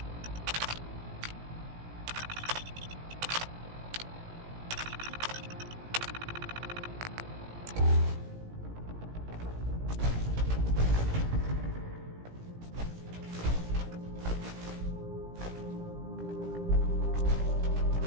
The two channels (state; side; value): late; left; 17 ms